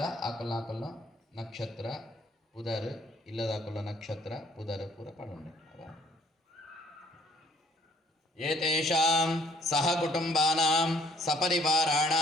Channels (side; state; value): both; normal; correlation 0.60